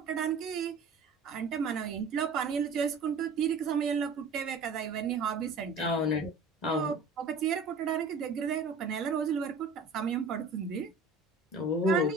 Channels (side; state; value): left; quieter; 3.9 dB